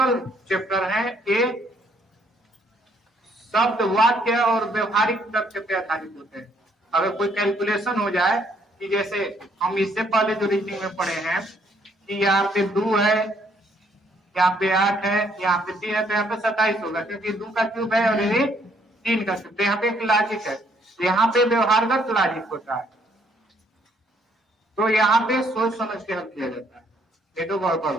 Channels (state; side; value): normal; both; correlation 0.67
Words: चैप्टर है। ये शब्द वाक्य और व्यवहारिक तथ्य पे आधारित होते हैं। अगर कोई कैलकुलेशन हो जाए कि जैसे हम इससे पहले जो रीडिंग में पढ़े हैं कि यहाँ पे 2 है, यहाँ पे 8 है, यहाँ पे 3 है, तो यहाँ पे 27 होगा क्योंकि 2 का क्यूब है और ये 3 का क्यूब। तो यहाँ पे एक लॉजिक है, यहाँ पे व्यवहारगत लॉजिक होता है, तो यहाँ पे सोच समझ के हल किया जाता है, ये तो गड़बड़